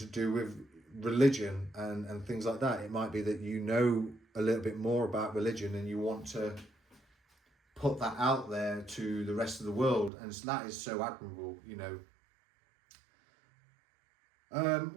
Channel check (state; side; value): drops out; left; at 10.1 s